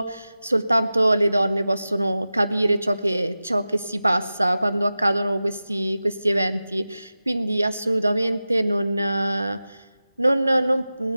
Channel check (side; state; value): both; inverted; correlation -0.95